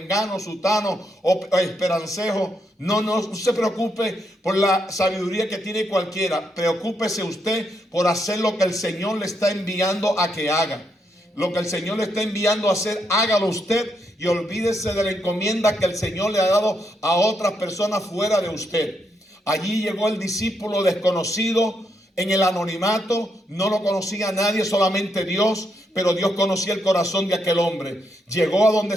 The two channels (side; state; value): both; normal; correlation 0.79